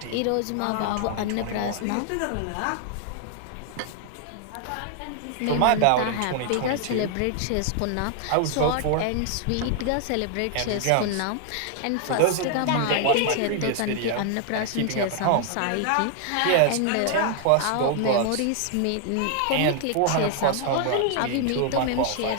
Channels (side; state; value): both; different; correlation 0.00